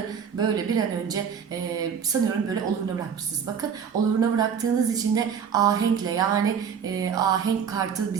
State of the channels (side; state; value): left; quieter; 7.2 dB